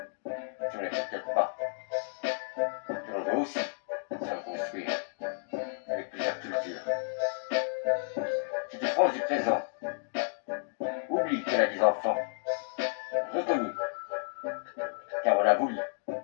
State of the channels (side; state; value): right; silent; digital silence